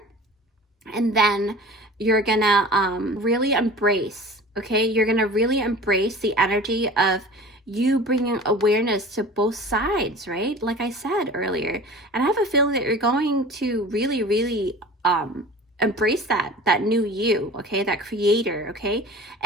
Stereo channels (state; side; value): normal; both; correlation 0.39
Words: And then you're gonna really embrace, okay? You're gonna really embrace the energy of you bringing awareness to both sides, right? Like I said earlier. And I have a feeling that you're going to really, really embrace that new you, okay? That creator, okay?